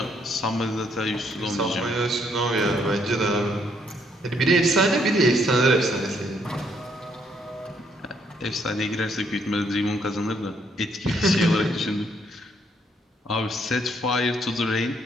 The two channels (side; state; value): both; normal; correlation 0.70